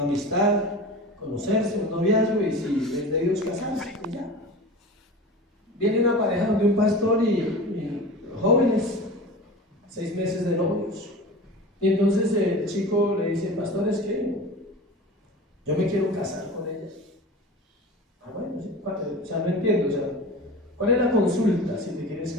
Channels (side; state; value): both; normal; correlation 0.34